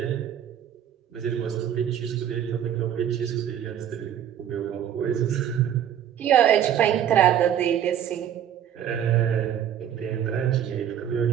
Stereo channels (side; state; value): left; quieter; 9.9 dB